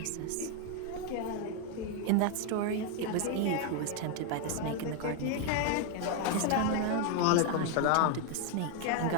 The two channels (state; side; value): different; both; correlation 0.01